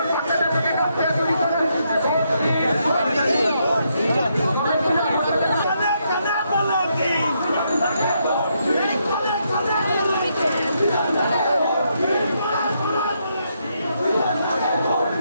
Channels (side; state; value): both; inverted; correlation -0.77